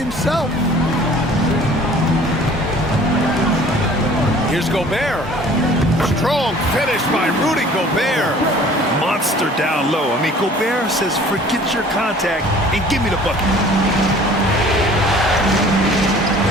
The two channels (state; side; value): normal; both; correlation 0.50